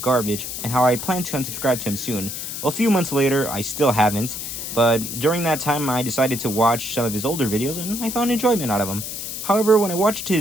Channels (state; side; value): noise; left; hiss, 6 dB below the sound